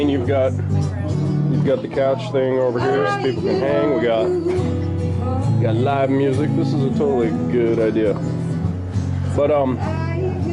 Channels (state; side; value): identical; both; correlation 1.00